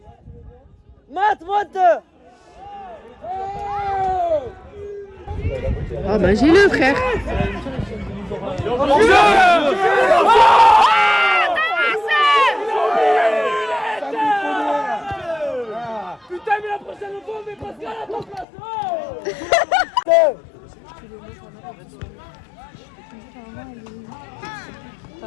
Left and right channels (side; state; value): right; drops out; at 18.4 s